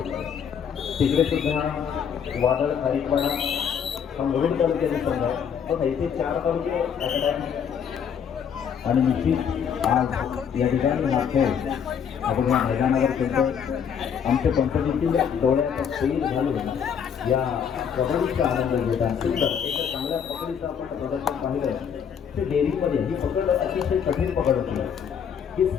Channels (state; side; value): quieter; right; 7.6 dB